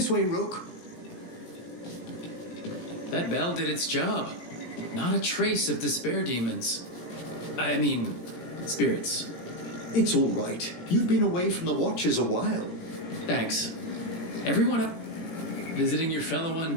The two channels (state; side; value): late; right; 17 ms